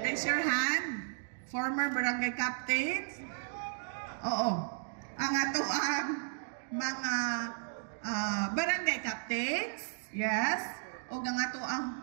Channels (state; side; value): silent; left; digital silence